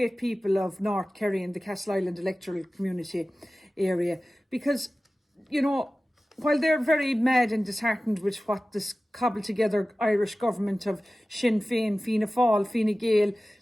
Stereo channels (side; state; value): both; normal; correlation 0.96